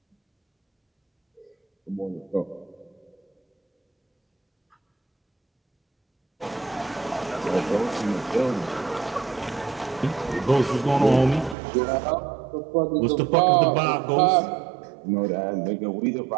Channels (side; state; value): left; drops out; at 11.6 s